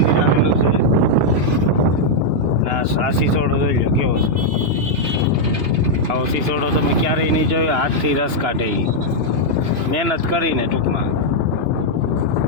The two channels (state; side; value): late; left; 2.9 ms